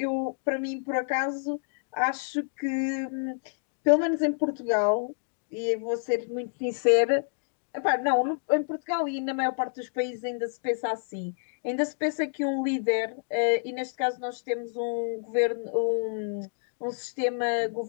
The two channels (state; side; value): silent; right; digital silence